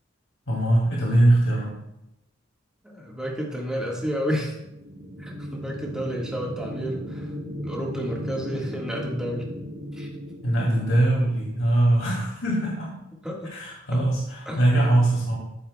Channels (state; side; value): normal; both; correlation 0.87